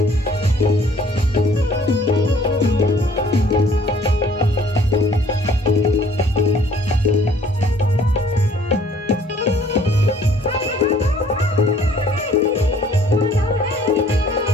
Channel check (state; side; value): normal; both; correlation 0.58